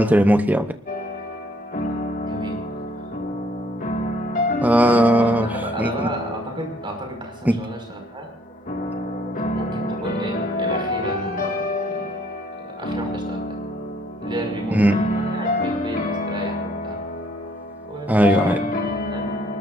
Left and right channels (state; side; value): normal; both; correlation 0.65